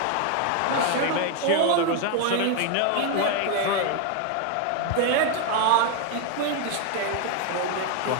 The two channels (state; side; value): different; both; correlation 0.01